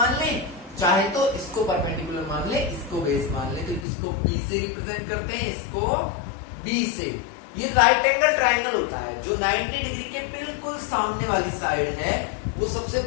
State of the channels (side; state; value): right; drops out; at 3.9 s